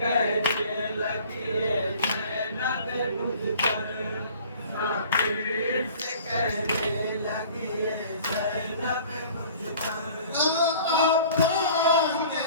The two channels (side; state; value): both; inverted; correlation -0.48